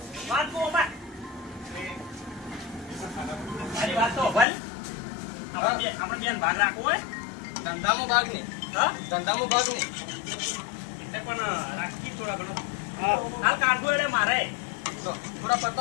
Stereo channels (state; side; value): drops out; right; at 4.5 s